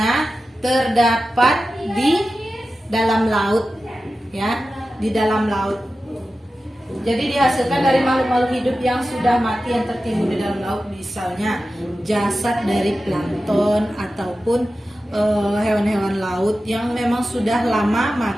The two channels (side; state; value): both; normal; correlation 0.93